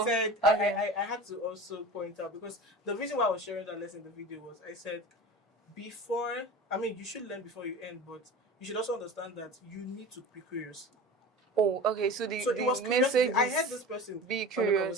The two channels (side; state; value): both; normal; correlation 0.34